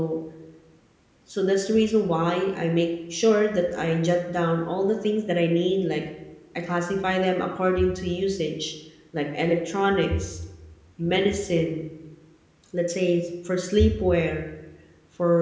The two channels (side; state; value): both; identical; correlation 1.00